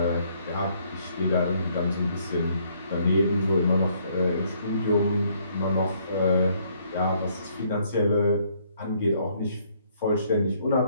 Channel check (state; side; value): inverted; both; correlation -0.67